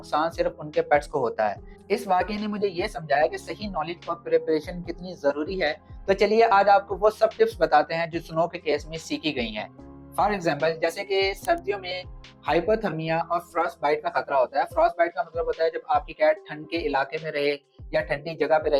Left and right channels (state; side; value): identical; both; correlation 1.00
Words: सिर्फ उनके पेट्स को होता है। इस वाकये ने मुझे ये समझाया कि सही नॉलेज और प्रिपरेशन कितनी जरूरी है। तो चलिए आज आपको वो सब टिप्स बताते हैं जो स्नो के केस में सीखी गई हैं। फॉर एग्जाम्पल, जैसे कि सर्दियों में हाइपोथर्मिया और फ्रॉस्ट बाइट का खतरा होता है। फ्रॉस्ट बाइट का मतलब होता है जब आपकी कैट ठंड के इलाके में रहे या ठंडी जगह पे